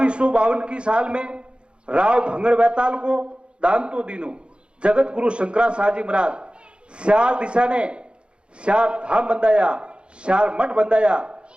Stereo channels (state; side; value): late; left; 0.056 ms